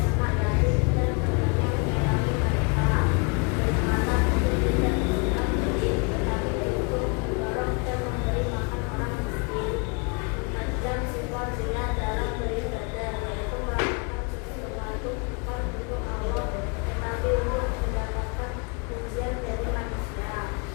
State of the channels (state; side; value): quieter; right; 33.4 dB